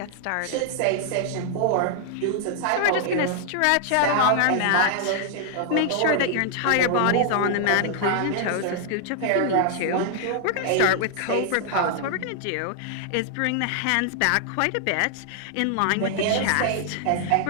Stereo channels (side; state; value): both; different; correlation 0.00